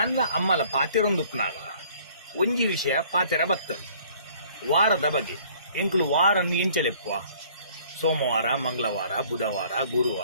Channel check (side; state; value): both; inverted; correlation -0.56